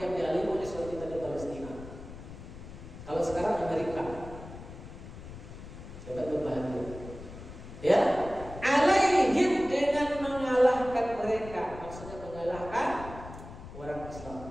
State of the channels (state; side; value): noise; left; rumble, 13 dB below the sound